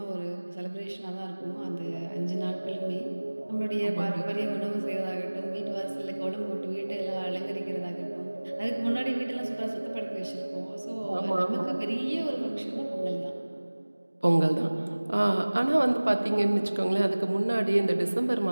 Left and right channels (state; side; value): inverted; both; correlation -1.00